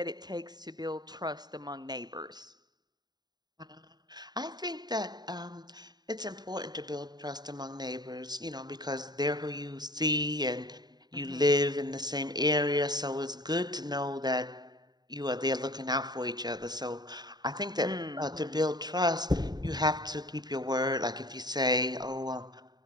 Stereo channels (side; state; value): left; late; 0.20 ms